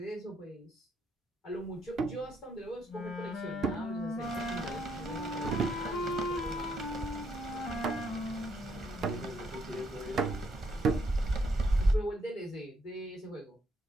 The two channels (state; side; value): normal; both; correlation 0.73